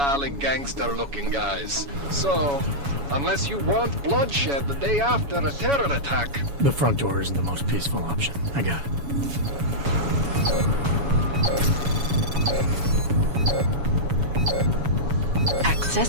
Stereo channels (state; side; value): late; left; 7.1 ms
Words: gangster-looking guys. So, unless you want bloodshed the day after a terror attack... The front door isn't the most peaceful option. I got it.